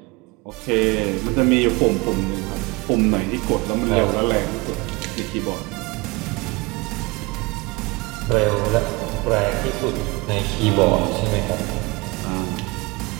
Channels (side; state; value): left; quieter; 25.5 dB